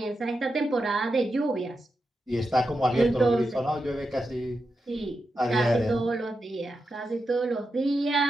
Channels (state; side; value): normal; both; correlation 0.88